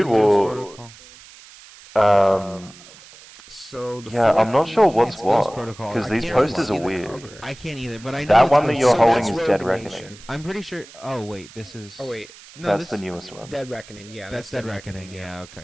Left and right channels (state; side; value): noise; right; hiss, 21 dB below the sound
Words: say Ghost well, Protocol? So the Yeah, I'm not sure what's It's Ghost what Protocol. because I these can't really posters see are the weird. cover. I can't either, but I know That it's one that Ghost you're So holding that's is Rogue Dead Nation. Reckoning. I'm pretty sure. Oh wait, this is. Oh wait, no, That's this the newest one. Dead Reckoning. Yeah, That's Dead Reckoning. Yeah.